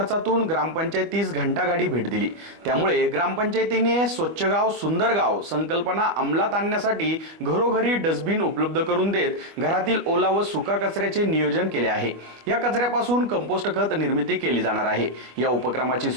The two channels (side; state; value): left; late; 24 ms